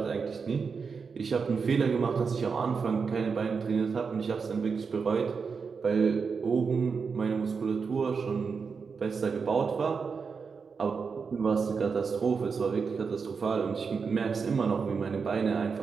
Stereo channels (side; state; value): left; quieter; 5.4 dB